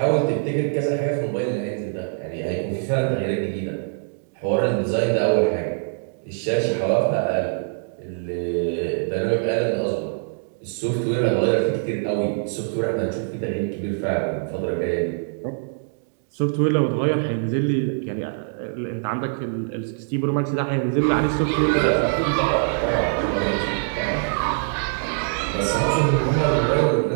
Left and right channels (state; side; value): silent; left; digital silence